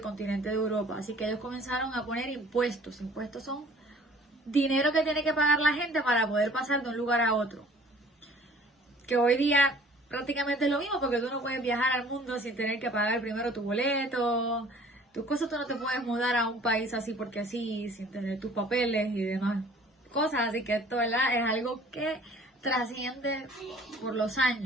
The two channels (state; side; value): normal; both; correlation 0.52